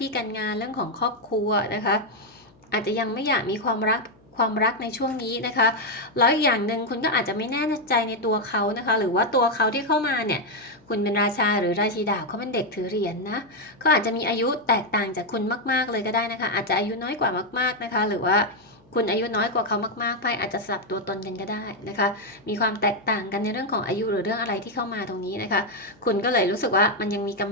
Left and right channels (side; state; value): left; noise; hum, 29 dB below the sound